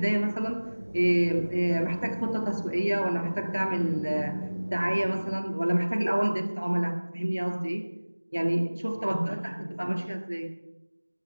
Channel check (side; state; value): both; inverted; correlation -1.00